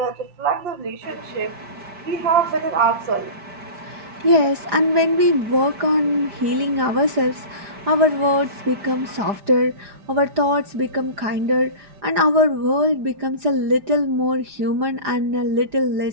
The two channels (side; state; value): left; late; 4.9 ms